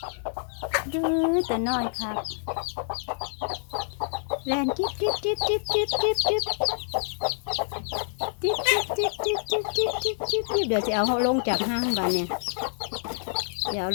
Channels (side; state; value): right; silent; digital silence